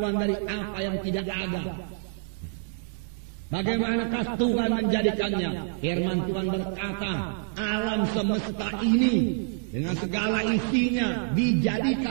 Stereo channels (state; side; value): silent; left; digital silence